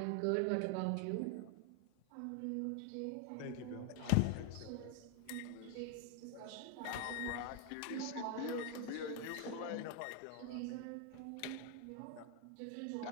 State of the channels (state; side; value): different; both; correlation 0.01